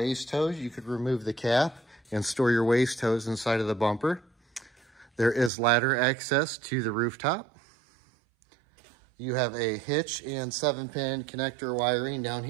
hose. You could remove the cap and store your waste hose inside of the bumper. There is ladder access to the rooftop. You have a hitch and 7-pin connector wiring down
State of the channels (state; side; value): drops out; left; at 5.5 s